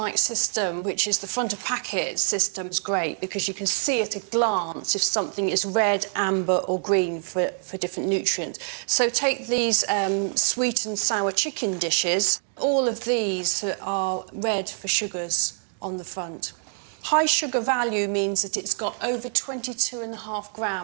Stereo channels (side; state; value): left; silent; 61 dB below the other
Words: system, which is the front of packet system, is great because you can see at a glance if something is red, amber or green for different nutrients. So take these sweet and sour chicken dishes. All of these are red for sugars on the front. High sugar value means that it's got over 22.5